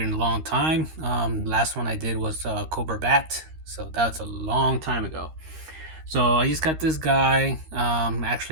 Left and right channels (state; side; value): late; left; 13 ms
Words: in a long time. Last one I did was Cobra Bat, so that's a long time ago. So I just got this guy